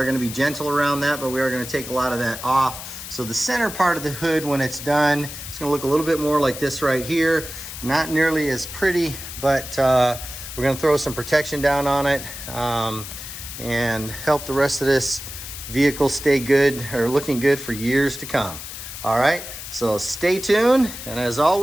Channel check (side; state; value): left; noise; hiss, 10 dB below the sound